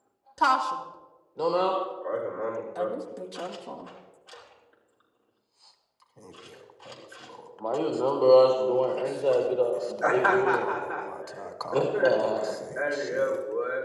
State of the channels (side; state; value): both; identical; correlation 1.00